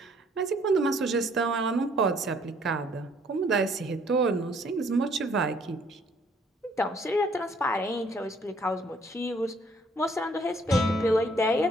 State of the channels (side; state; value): both; normal; correlation 0.63